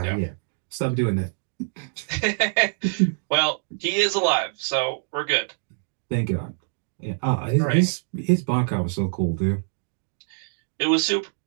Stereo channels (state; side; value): silent; left; digital silence